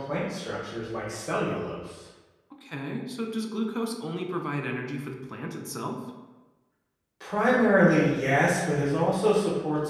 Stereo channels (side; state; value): both; identical; correlation 1.00